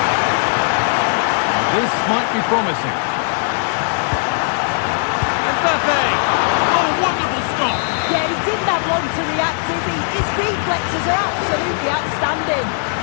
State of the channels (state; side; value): silent; right; digital silence